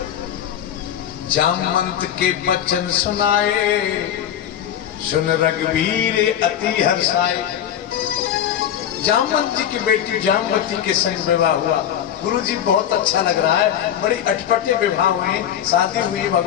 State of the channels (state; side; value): quieter; right; 10.1 dB